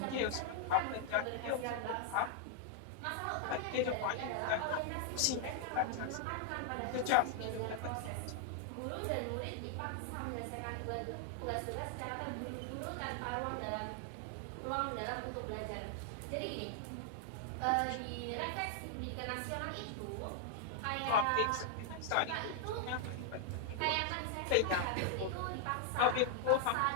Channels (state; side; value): different; both; correlation 0.00